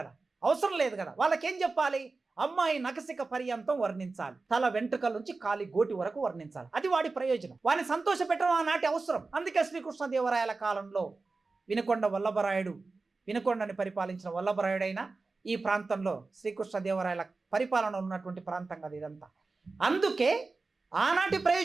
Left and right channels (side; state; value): left; quieter; 3.8 dB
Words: అవసరం లేదు కదా. వాళ్ళకేం చెప్పాలి? అమ్మాయి నకసిక పర్యంతం వర్ణించాలి, తల వెంట్రుకల నుంచి కాలి గోటి వరకు వర్ణించాలి, అది వాడి ప్రయోజనం. వాడిని సంతోష పెట్టడం ఆనాటి అవసరం. అందుకే శ్రీకృష్ణదేవరాయల కాలంలో వినుకొండ వల్లభరాయుడు, వినుకొండని పరిపాలించిన వల్లభరాయుడైనా ఈ ప్రాంతంలో శ్రీకృష్ణదేవరాయల పరిపాలన ఉన్నటువంటి ప్రాంతం కదా ఇదంతా. అందుకే ఆనాటి